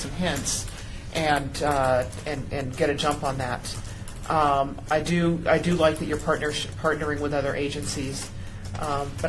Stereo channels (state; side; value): identical; both; correlation 1.00